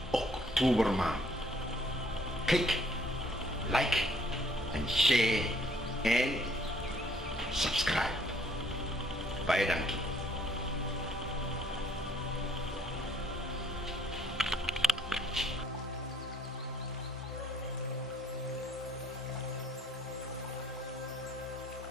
Oktobermaand. Kijk, like en share en subscribe. Baie dankie.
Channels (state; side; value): normal; both; correlation 0.63